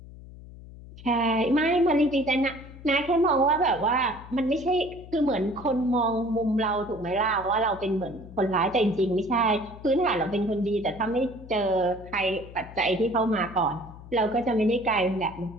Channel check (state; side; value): noise; left; hum, 17 dB below the sound